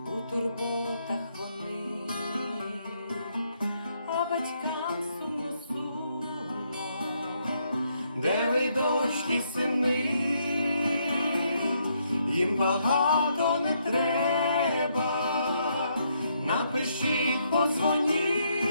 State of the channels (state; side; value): inverted; both; correlation -0.74